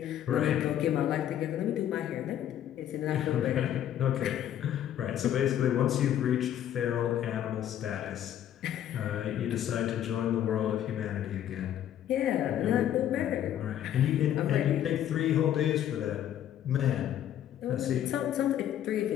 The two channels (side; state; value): right; quieter; 10.9 dB